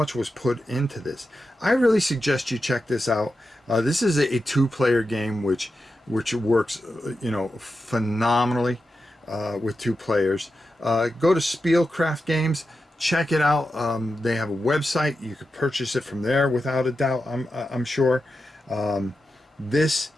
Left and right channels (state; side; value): normal; both; correlation 0.90